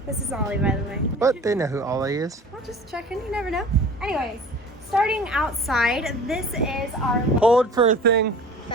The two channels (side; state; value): both; normal; correlation 0.42